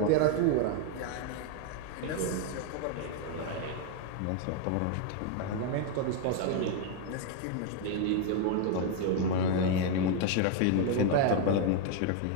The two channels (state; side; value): different; both; correlation 0.01